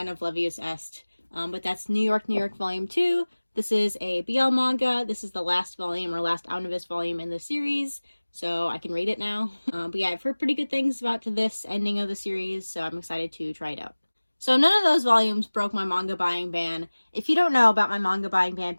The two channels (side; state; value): both; inverted; correlation -1.00